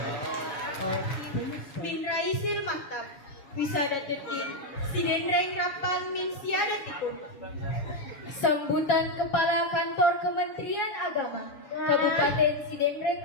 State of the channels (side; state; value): right; late; 7.2 ms